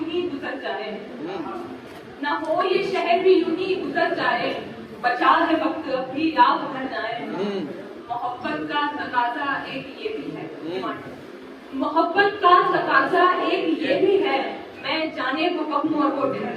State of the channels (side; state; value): both; identical; correlation 1.00